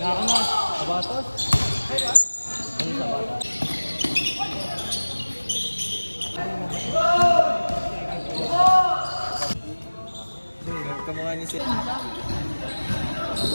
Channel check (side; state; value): both; inverted; correlation -1.00